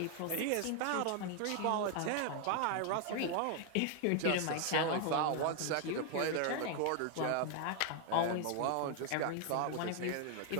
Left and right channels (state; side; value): different; both; correlation 0.00